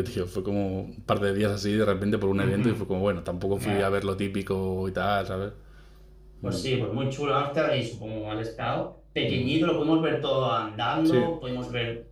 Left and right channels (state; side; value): identical; both; correlation 1.00